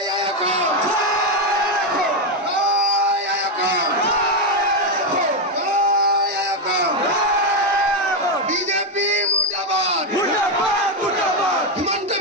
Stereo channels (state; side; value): normal; both; correlation 0.06